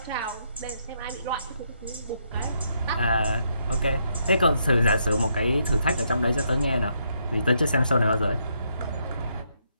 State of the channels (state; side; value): inverted; both; correlation -0.76